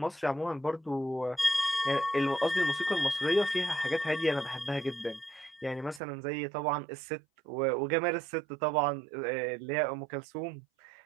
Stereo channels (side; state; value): left; drops out; at 6.0 s